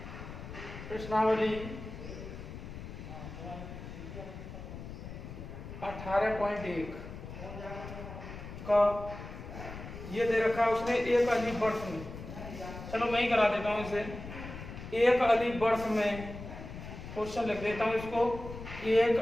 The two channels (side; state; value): left; noise; rumble, 11 dB below the sound